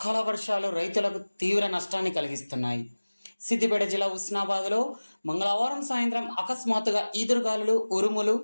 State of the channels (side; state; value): both; inverted; correlation -1.00